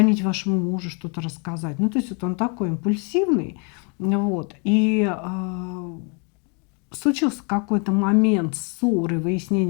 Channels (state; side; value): quieter; right; 36.1 dB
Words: вашему мужу, что-то рассказать. Ну, то есть вот он такой импульсивный, вот, и случился какой-то момент ссоры,